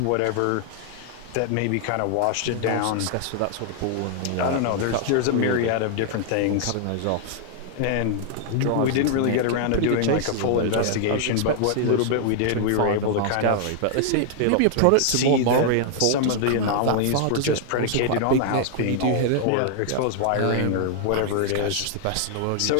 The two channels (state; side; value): different; both; correlation 0.00